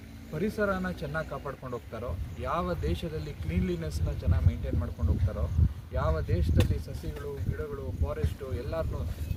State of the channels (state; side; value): identical; both; correlation 1.00